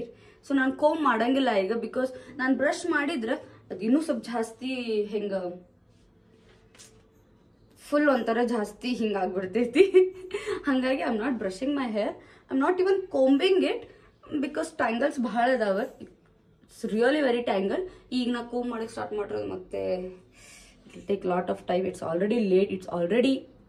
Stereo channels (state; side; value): identical; both; correlation 1.00